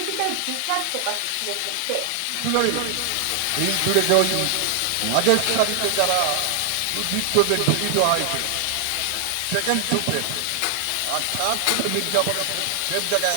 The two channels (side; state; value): both; different; correlation 0.00